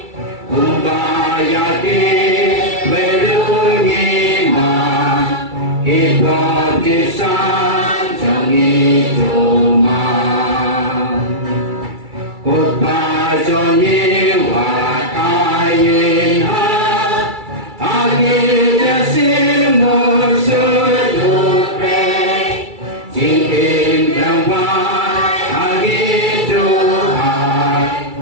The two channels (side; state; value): left; late; 2.3 ms